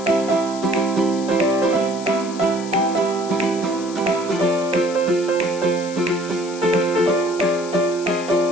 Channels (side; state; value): left; noise; hiss, 15 dB below the sound